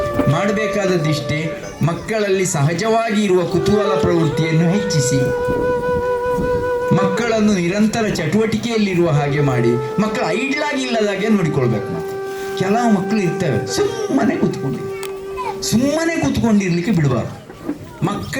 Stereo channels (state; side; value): identical; both; correlation 1.00